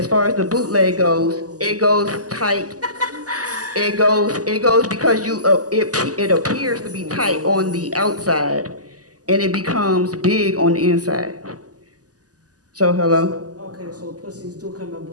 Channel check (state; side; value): late; left; 0.67 ms